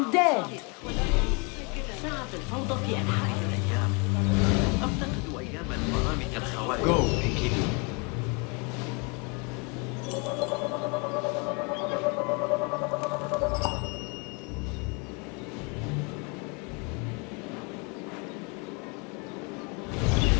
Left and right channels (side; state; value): right; quieter; 32.3 dB